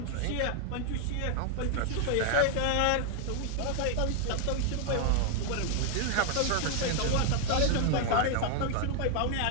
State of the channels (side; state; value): both; different; correlation 0.00